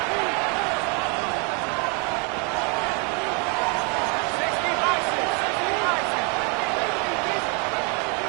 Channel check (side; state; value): left; quieter; 34.7 dB